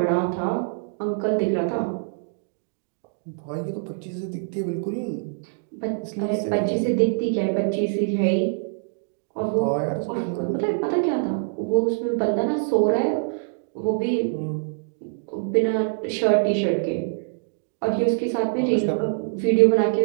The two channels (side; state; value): left; silent; digital silence